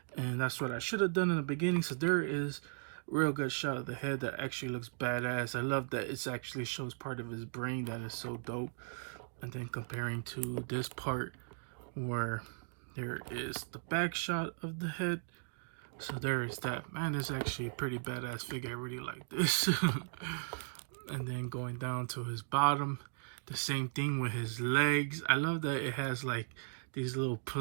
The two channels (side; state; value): left; silent; digital silence